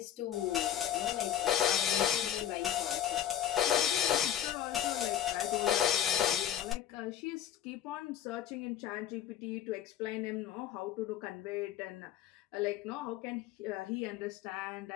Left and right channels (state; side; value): quieter; right; 10.5 dB